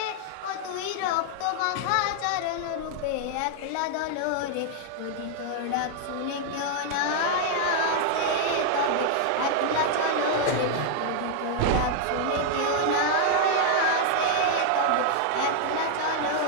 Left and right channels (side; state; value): both; different; correlation 0.00